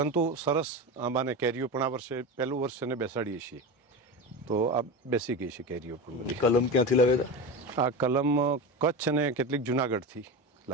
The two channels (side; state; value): both; normal; correlation 0.23